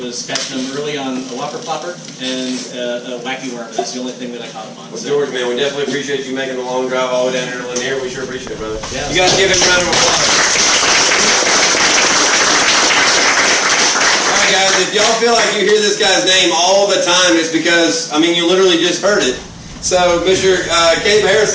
catching them early on a whopper plopper and a wacky worm. That's the only thing that I caught them on. Well, George, man, we definitely appreciate you making the long drive all the way down here to Lanier. We sure appreciate it, brother. Yeah. You guys give him a round of applause. All right, guys, if y'all feel like you hear this guy's name all the time, it's because, you literally just heard it. So, Mr. Cabe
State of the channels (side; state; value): both; identical; correlation 1.00